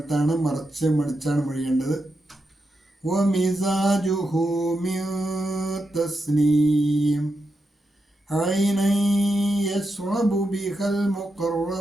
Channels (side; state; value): both; normal; correlation 0.86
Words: മണിച്ചാണ് മൊഴിയേണ്ടത്. ومزاجه من تسنيم عينا يشرب بها